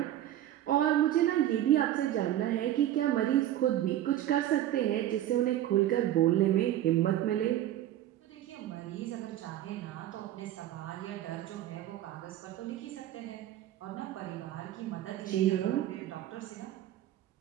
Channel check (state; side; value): quieter; left; 12.8 dB